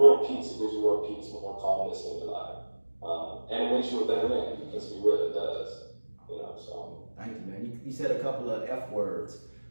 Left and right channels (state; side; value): inverted; both; correlation -1.00